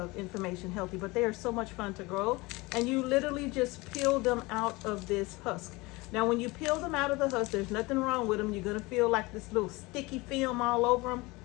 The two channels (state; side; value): quieter; right; 23.2 dB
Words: information healthy, but they are so much fun to grow. And you literally just peel them out of this husk. Now, when you peel them out of the husk, there's nothing wrong with them. You're gonna feel like this little sticky film all over them.